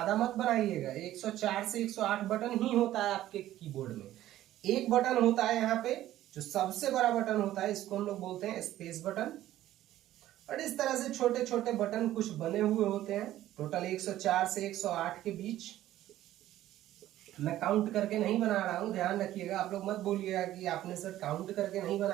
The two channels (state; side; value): quieter; left; 13.8 dB